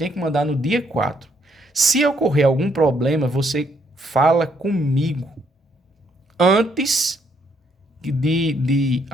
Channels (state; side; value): normal; both; correlation 0.71